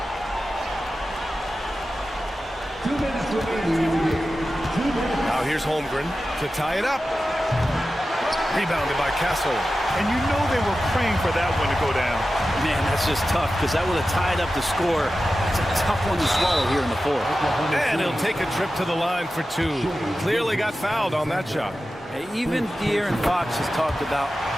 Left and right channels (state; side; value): normal; both; correlation 0.93